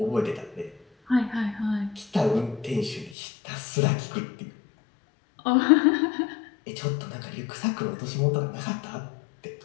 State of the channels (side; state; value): right; drops out; at 3.2 s